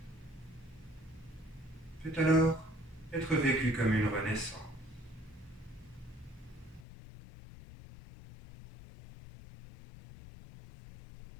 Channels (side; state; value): right; drops out; at 6.9 s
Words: peut alors être vécue comme une renaissance.